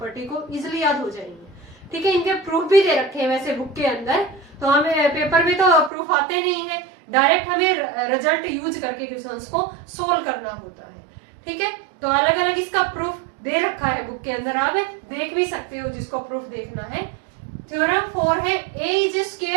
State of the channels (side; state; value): left; drops out; at 5.9 s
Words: को इजिली याद हो जाएंगे। ठीक है, इनके प्रूफ भी दे रखे हैं वैसे बुक के अंदर, तो हमें पेपर में तो प्रूफ आते नहीं है, डायरेक्ट हमें रिजल्ट यूज करके क्वेश्चंस को सोल्व करना होता है। ठीक है, तो अलग अलग इसका प्रूफ दे रखा है बुक के अंदर, आप देख भी सकते हो जिसको प्रूफ देखना है। थ्योरम 4 है A is